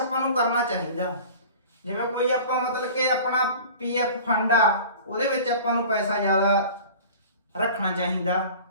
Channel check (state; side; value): inverted; both; correlation -0.41